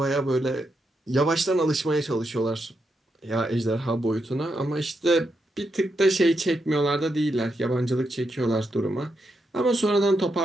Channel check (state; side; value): normal; both; correlation 0.83